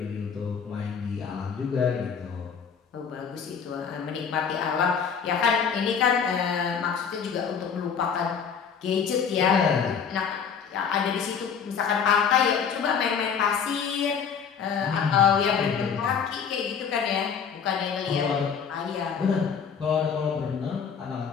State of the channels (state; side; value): quieter; right; 6.8 dB